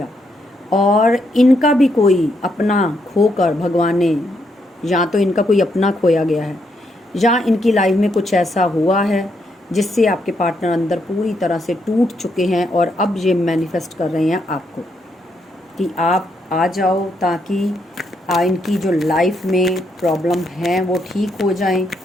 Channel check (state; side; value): normal; both; correlation 0.77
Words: और इनका भी कोई अपना खोकर भगवान ने, या तो इनका कोई अपना खोया गया है, या इनकी लाइफ में कुछ ऐसा हुआ है जिससे आपके पार्टनर अंदर पूरी तरह से टूट चुके हैं, और अब ये मैनिफेस्ट कर रहे हैं आपको कि आप आ जाओ, ताकि इनकी जो लाइफ में प्रॉब्लम है वो ठीक हो जाएं।